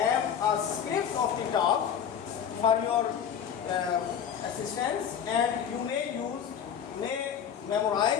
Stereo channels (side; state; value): right; quieter; 8.3 dB